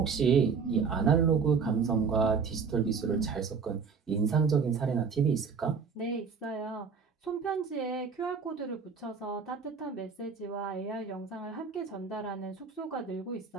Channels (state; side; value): quieter; left; 5.6 dB